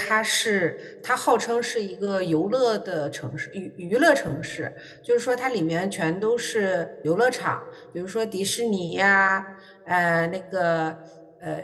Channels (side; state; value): both; identical; correlation 1.00